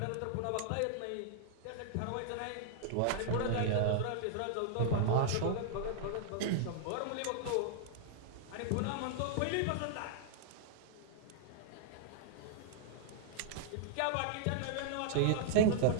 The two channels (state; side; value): different; both; correlation -0.01